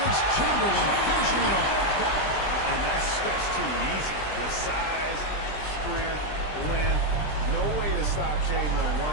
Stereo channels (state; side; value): late; right; 20 ms